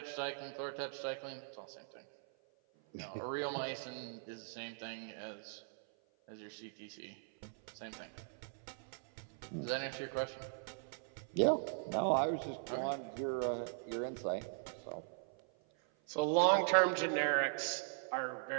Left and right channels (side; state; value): left; silent; 51 dB below the other